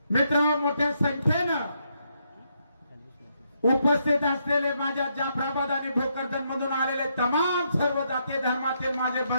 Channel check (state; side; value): inverted; both; correlation -0.77